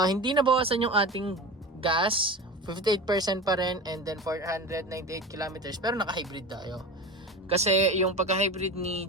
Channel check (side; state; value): both; normal; correlation 0.30